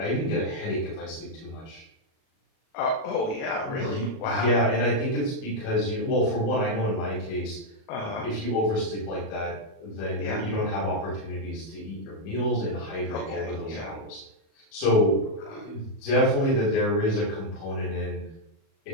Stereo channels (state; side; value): late; right; 37 ms